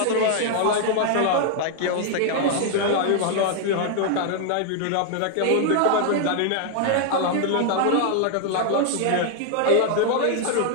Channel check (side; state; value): both; different; correlation 0.00